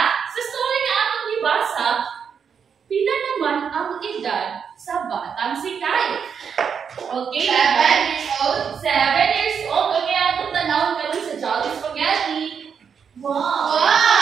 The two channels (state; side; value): quieter; left; 6.9 dB